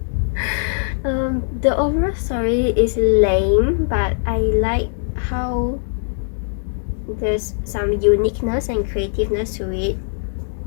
The overall story is lame, but I like how there's some uniqueness and creativeness to it.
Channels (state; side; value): silent; right; digital silence